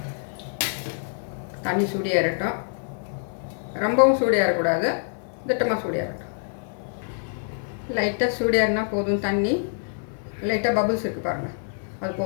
தண்ணி சூடியாகட்டும், ரொம்பவும் சூடியாகக்கூடாது, திட்டமாக சூடியாகட்டும். லைட்டாக சூடியாருன்னா போதும். தண்ணி லைட்டாக பபுள்ஸ் இருக்குது பாருங்கள், அது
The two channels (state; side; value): silent; right; 61 dB below the other